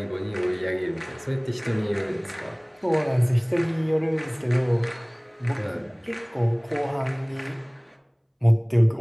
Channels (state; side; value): identical; both; correlation 1.00